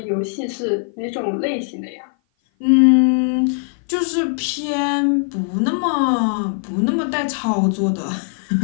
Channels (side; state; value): right; silent; 56 dB below the other